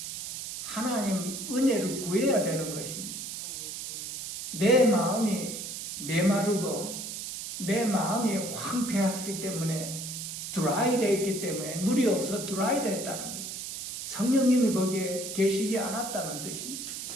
하나님 은혜를 구해야 되는 것입니다. 내 마음이 메마르고 내 마음이 황폐했기 때문에 드라이 되어 있기 때문에 물이 없어 드라이 됐다는 거예요. 성령님이 거기에 계시지 않았다는 뜻입니다.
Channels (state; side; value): noise; right; hiss, 7 dB below the sound